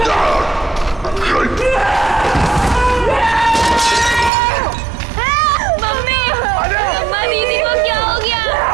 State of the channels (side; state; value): left; drops out; at 4.3 s